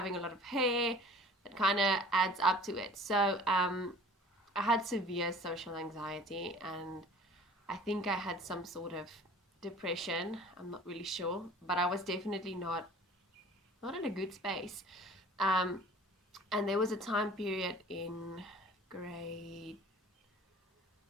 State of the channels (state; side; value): normal; both; correlation 0.47